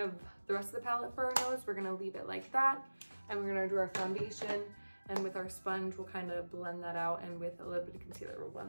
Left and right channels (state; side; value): inverted; both; correlation -1.00